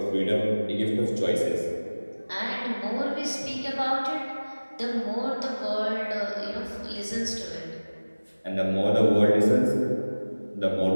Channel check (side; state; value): both; inverted; correlation -1.00